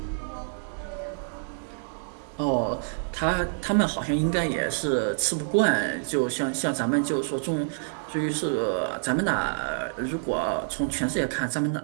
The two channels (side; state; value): left; silent; digital silence